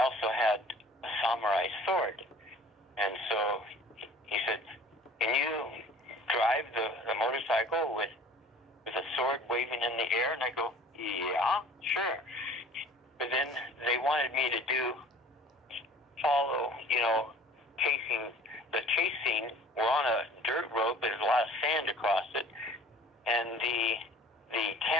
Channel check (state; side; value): normal; both; correlation 0.48